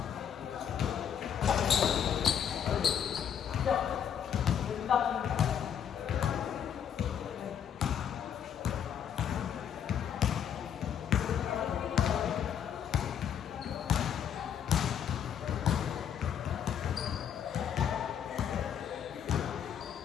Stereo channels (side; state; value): right; quieter; 8.7 dB